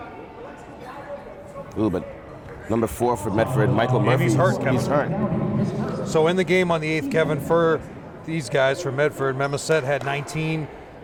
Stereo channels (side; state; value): both; identical; correlation 1.00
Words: Ooh, but number 4 for Medford, Michael Murphy. He's hurt, Kevin. He's hurt. So in the game on the 8th, Kevin, for these guys from Medford, Memaset had 19,